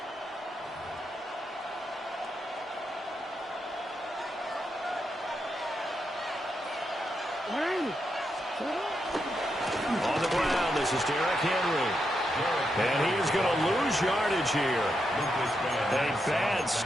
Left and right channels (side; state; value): both; normal; correlation 0.83